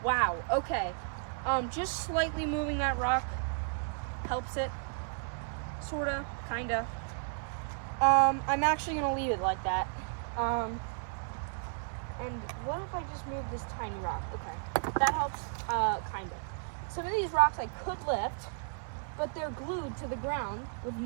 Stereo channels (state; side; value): silent; left; digital silence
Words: Wow, okay. Just slightly moving that rock helps it, sorta, kinda. I'm actually gonna leave it like that. And what if I just move this tiny rock? Okay, that helps, kinda. Some of these rocks I could lift, but they're glued to the ground with